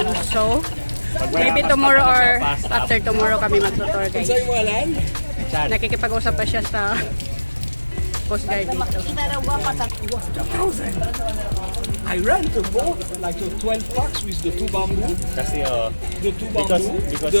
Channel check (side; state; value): both; inverted; correlation -1.00